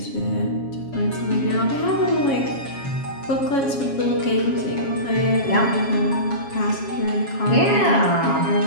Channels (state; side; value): late; right; 7.2 ms